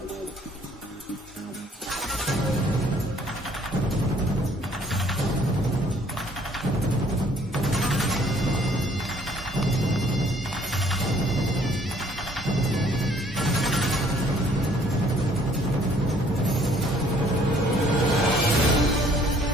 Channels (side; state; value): both; normal; correlation 0.60